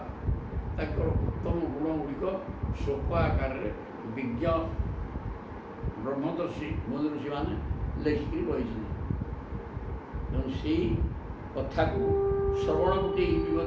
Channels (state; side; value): identical; both; correlation 1.00